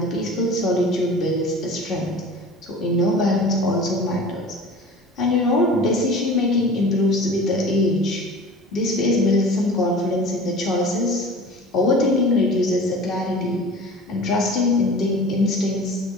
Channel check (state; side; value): normal; both; correlation 0.40